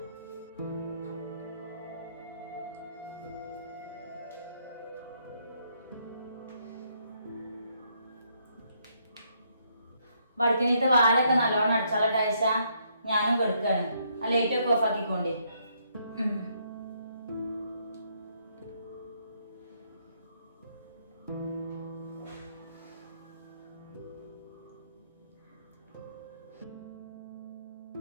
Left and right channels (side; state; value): both; inverted; correlation -0.72